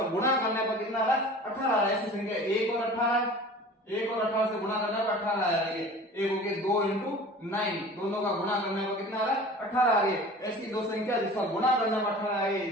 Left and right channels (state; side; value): normal; both; correlation 0.41